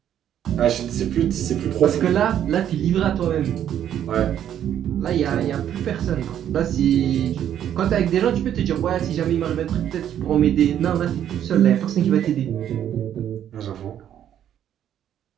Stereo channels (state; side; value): quieter; left; 10.3 dB